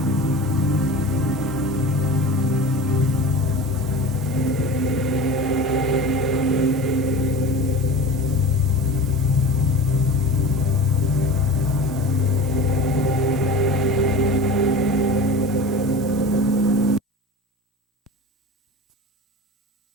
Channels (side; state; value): both; normal; correlation 0.34